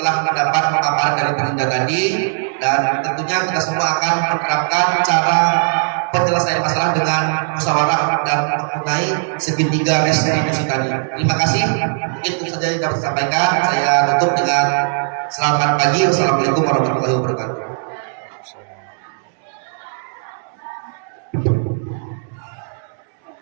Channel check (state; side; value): silent; left; digital silence